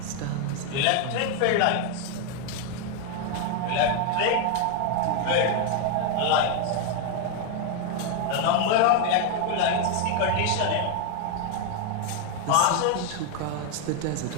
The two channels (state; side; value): different; both; correlation 0.01